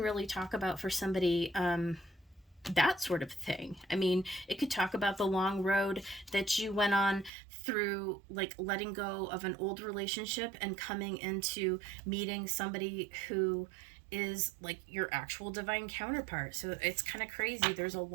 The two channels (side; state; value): left; drops out; at 7.3 s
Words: talk about for somebody that sort of thing. I mean, it could talk about the long road that you went on through, like letting go of an old relationship and coming into meeting somebody who is like your actual divine counterpart. So it's kind of crazy. There's a